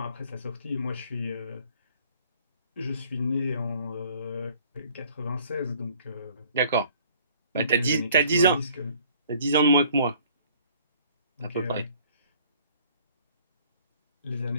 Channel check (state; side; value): inverted; both; correlation -0.56